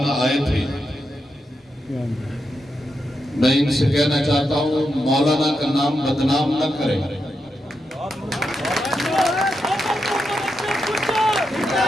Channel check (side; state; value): both; normal; correlation 0.85